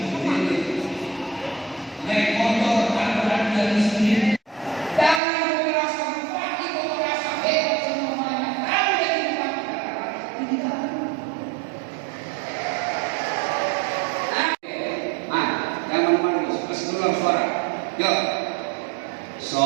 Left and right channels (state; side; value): drops out; left; at 5.2 s